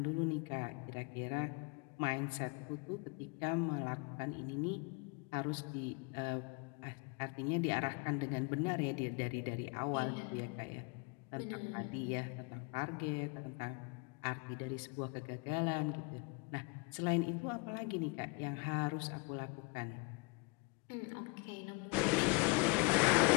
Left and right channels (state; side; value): quieter; right; 29.8 dB